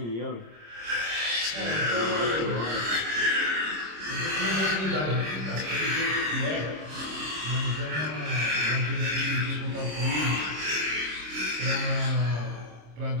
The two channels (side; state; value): left; late; 26 ms